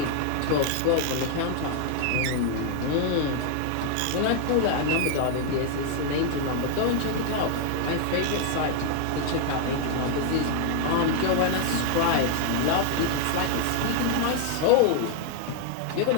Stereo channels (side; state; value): both; different; correlation 0.00